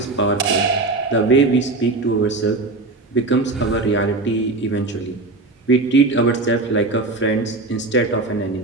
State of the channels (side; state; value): left; quieter; 3.3 dB